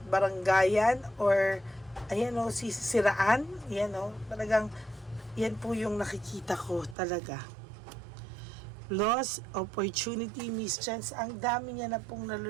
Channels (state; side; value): drops out; left; at 7.0 s